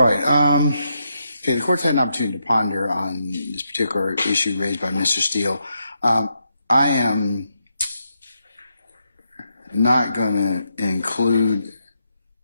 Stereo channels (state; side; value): inverted; both; correlation -0.82